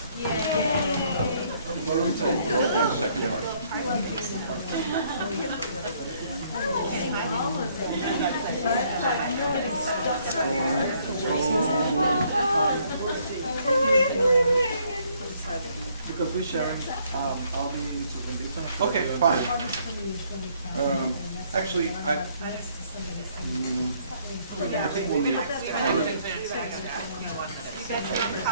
Yay! The second part. Because we're sharing Alvin into Melissa. Okay, fine. Actually, I think we'll need another.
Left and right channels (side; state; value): both; inverted; correlation -0.66